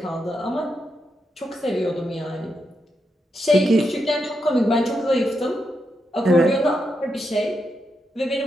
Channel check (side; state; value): both; normal; correlation 0.84